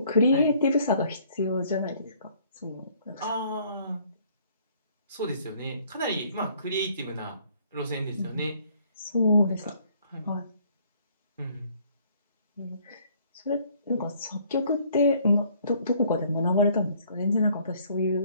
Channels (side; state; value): both; inverted; correlation -0.61